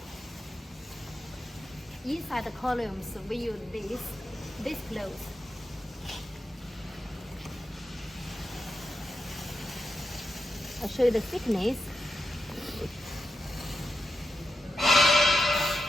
Inside the columns, we use this clothes. I'll show you the thickness.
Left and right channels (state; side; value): normal; both; correlation 0.87